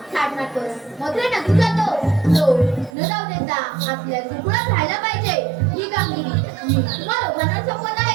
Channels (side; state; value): left; drops out; at 2.9 s